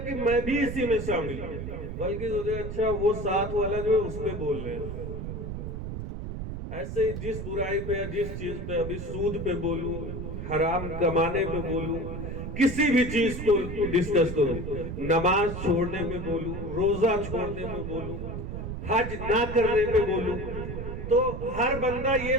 میں بھی اسی میں شامل ہوں، بلکہ سوچے گا اچھا وہ ساتھ والا جو ہے اس پہ بول رہے ہیں۔ ایسے ہی جس برائی پہ، جس چیز پہ، ابھی سود پہ بولوں، حرام کمانے پہ بولوں، کسی بھی چیز کو ڈسکس کروں، نماز چھوڑنے میں بولوں، روزہ چھوڑنے میں بولوں، حج نہ کرنے پہ بولوں، تو ہر بندہ یہ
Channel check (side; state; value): right; noise; rumble, 6 dB below the sound